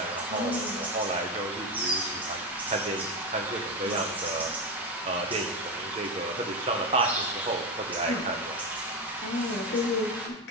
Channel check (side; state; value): both; normal; correlation 0.15